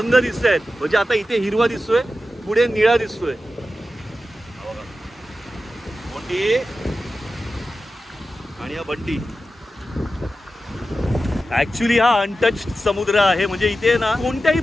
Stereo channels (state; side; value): normal; both; correlation 0.92